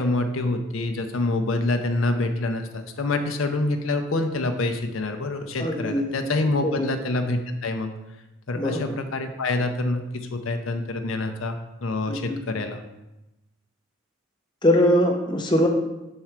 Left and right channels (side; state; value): both; normal; correlation 0.54